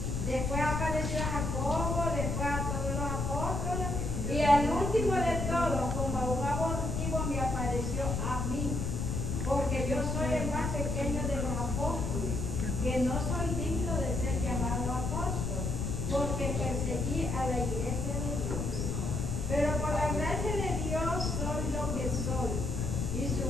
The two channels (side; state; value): left; noise; rumble, 1 dB below the sound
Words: Después apareció a Jacobo, después a todos los apóstoles, y al último de todos, como a un abortivo, me apareció a mí, porque yo soy el más pequeño de los apóstoles, que no soy digno de ser llamado apóstol, porque perseguí a la iglesia de Dios. Pero por la gracia de Dios soy lo que soy, y su